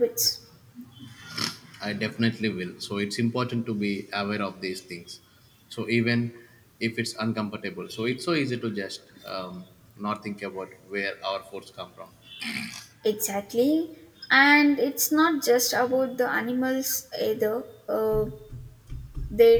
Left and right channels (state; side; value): identical; both; correlation 1.00